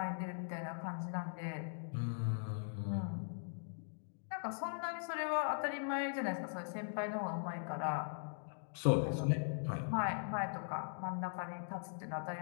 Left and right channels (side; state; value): right; silent; digital silence